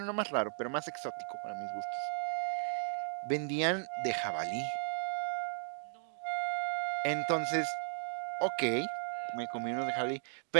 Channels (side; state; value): left; silent; digital silence